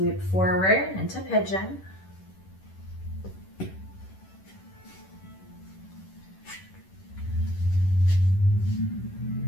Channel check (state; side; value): late; right; 11 ms